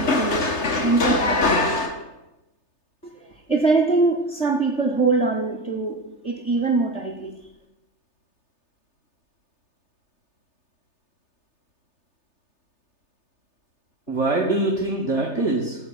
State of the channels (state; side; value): late; right; 3.3 ms